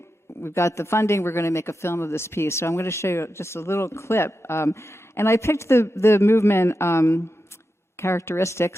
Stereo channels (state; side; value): normal; both; correlation 0.89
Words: we've got the funding, we're going to make a film of this piece. So I'm going to show you just a little clip. And I picked the movement